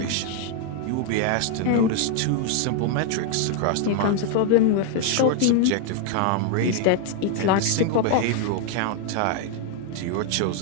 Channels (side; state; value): both; different; correlation 0.00